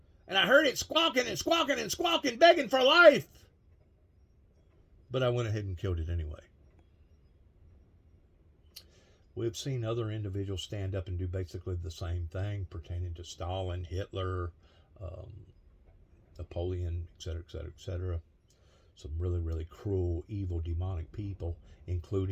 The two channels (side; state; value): both; identical; correlation 1.00